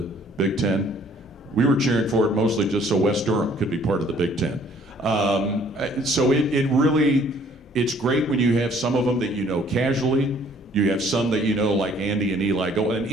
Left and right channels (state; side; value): normal; both; correlation 0.59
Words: Big Ten. We were cheering for it mostly just so West Durham could be part of the Big Ten. So it's great when you have some of them that you know casually. You have some that you know, like Andy and Eli. And